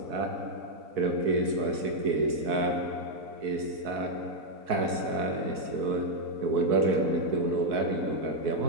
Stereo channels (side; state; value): left; late; 4.6 ms